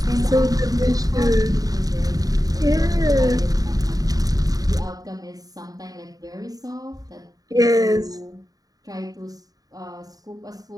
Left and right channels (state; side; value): late; left; 0.18 ms